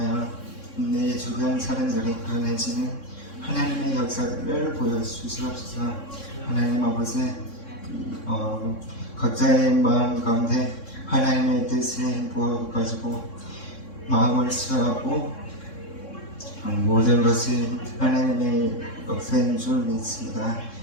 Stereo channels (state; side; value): late; right; 3.6 ms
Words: 내 주변 사람들이 변해지는 하나님의 역사들을 보여주시옵소서. 하나님 아버지 각자의 마음 가운데 하나님의 뜻을 부어가지고 마음을 수하고 모든 것이 하나님의 역사인 줄 믿습니다.